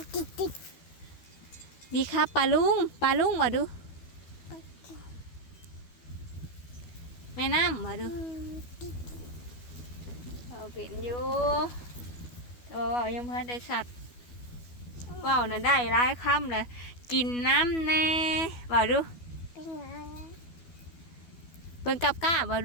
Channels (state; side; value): late; right; 12 ms